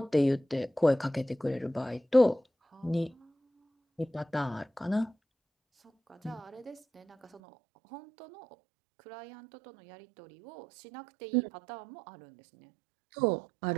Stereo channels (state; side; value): drops out; left; at 7.4 s